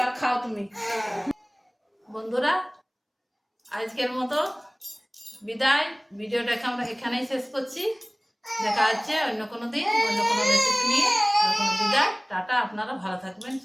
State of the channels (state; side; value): identical; both; correlation 1.00